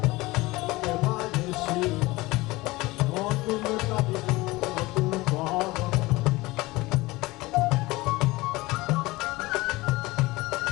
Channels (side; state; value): right; quieter; 20.9 dB